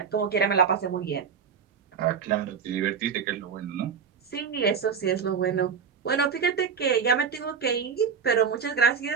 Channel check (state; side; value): quieter; left; 6.5 dB